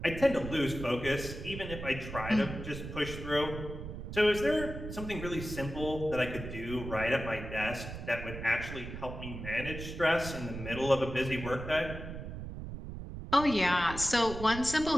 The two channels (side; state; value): right; noise; rumble, 9 dB below the sound